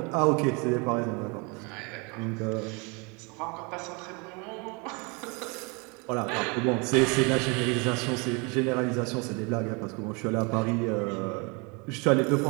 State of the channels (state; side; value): quieter; left; 30.5 dB